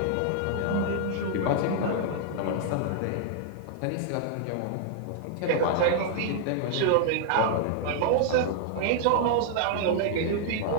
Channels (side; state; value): both; different; correlation -0.01